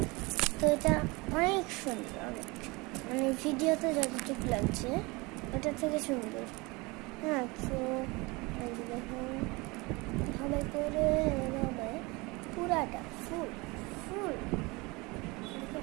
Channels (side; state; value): left; quieter; 25.0 dB